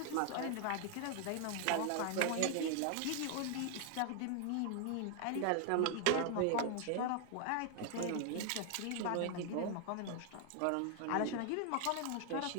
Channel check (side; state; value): both; different; correlation 0.00